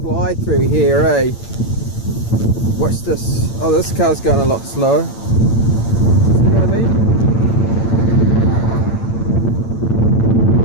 fly through here, eh? Watch this. Oh, this car's going a lot slow. See what I mean?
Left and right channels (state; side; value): late; right; 8.9 ms